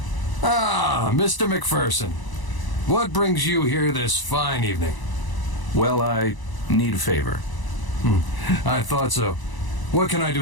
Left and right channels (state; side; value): late; right; 1.0 ms